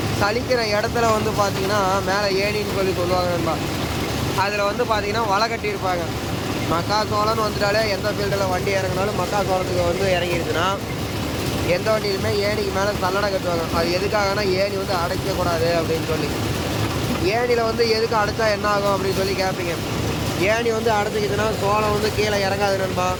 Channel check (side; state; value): both; identical; correlation 1.00